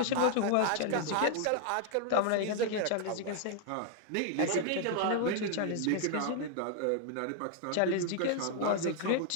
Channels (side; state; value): both; different; correlation 0.00